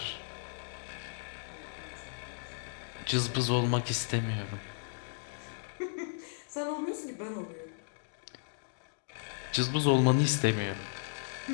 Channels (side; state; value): right; silent; digital silence